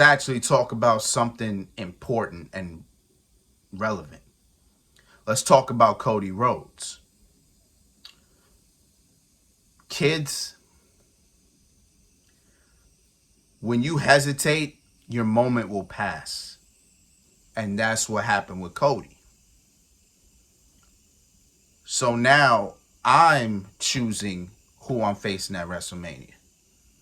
talk about something important and relevant. Let's talk about Cody Rhodes. Kids, when you hesitate, your moment will pass. And that's what happened with Cody. So now I'm choosing who I'm facing at WrestleMania.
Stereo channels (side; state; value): both; identical; correlation 1.00